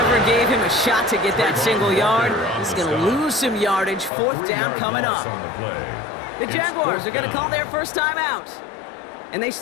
gave him a shot to get that single yard. He's going to lose some yardage. 4th down coming up. The Jaguars are going to call their first time out. And they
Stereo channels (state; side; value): drops out; right; at 4.1 s